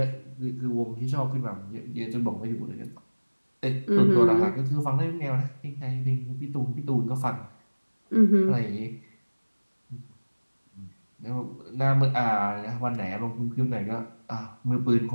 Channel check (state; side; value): inverted; both; correlation -1.00